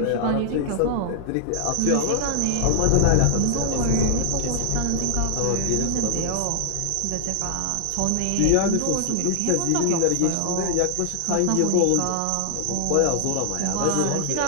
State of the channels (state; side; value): different; both; correlation 0.00